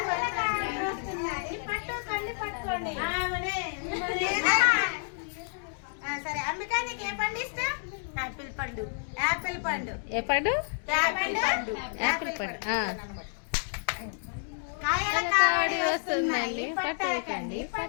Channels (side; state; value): right; silent; 58 dB below the other